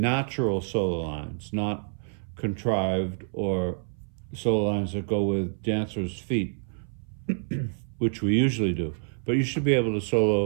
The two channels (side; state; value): left; silent; 58 dB below the other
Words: solo lines, not contrived or solo lines that go with dancers' feet, which we usually do. But you should be able to